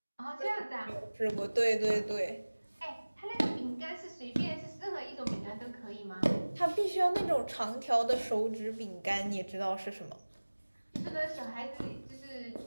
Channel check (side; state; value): both; inverted; correlation -1.00